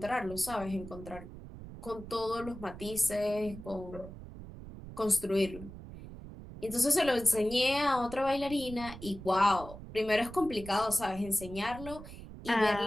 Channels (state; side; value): noise; right; rumble, 13 dB below the sound